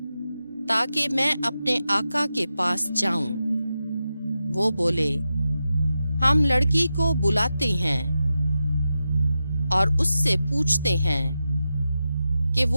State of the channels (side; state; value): both; inverted; correlation -0.90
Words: تاکہ میں اپنے آقا کے پاس جاؤں۔ وہ بولے، ہم لڑکی کو بلاتے ہیں اور اس سے پوچھتے ہیں کہ